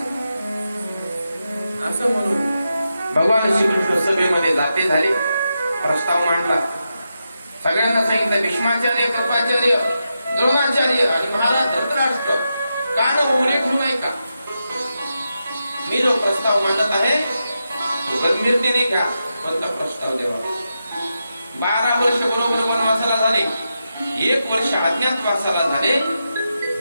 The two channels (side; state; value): both; inverted; correlation -0.87